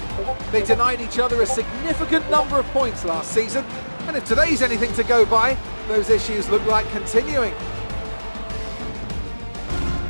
They denied each other a significant number of points last season, and if today's anything to go by, those issues look like continuing.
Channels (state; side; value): inverted; both; correlation -1.00